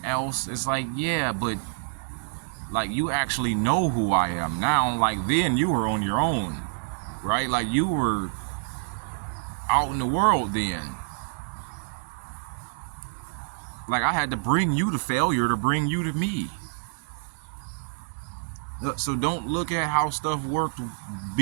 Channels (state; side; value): silent; left; 60 dB below the other